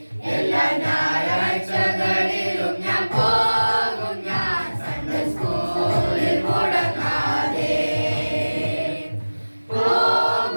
എല്ലാ ഞായറാഴ്ചകളിലും ഞാൻ പോകും ഞാൻ സൺഡേ സ്കൂളിൽ മുടങ്ങാതെ.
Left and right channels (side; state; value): both; inverted; correlation -1.00